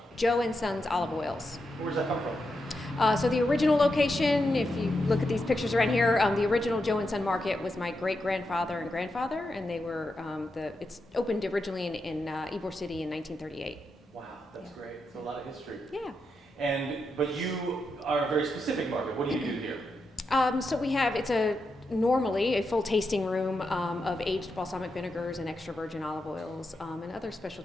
Joe and Sons Olive Oils. Where's that come from? So the original location, if you look at these pictures around here, the original Joe and Son Market was my great-grandfather and grandfather, and they were, it's opened originally in Ybor City in 1938. Wow, that's great. So a lot of history. Yeah. But you are a very specific market. What do you do here? So we have, normally a full tasting room of aged balsamic vinegars and extra virgin olive oils and other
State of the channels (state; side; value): normal; both; correlation 0.86